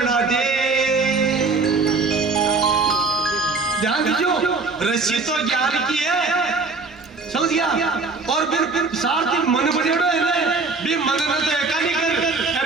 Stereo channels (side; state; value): left; quieter; 4.0 dB